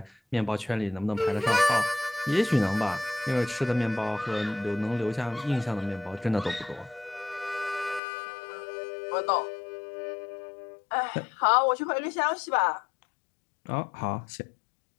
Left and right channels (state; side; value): drops out; right; at 8.0 s